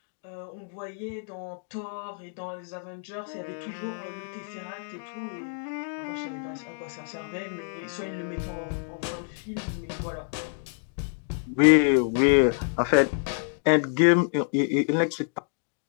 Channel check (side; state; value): right; silent; digital silence